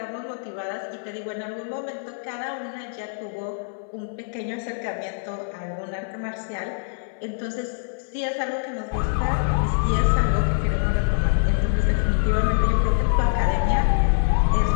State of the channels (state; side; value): silent; right; 60 dB below the other